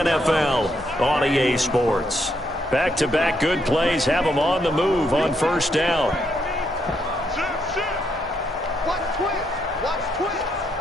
on EA Sports. Back-to-back good plays have them on the move on 1st down. Watch twist.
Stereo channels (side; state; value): both; normal; correlation 0.77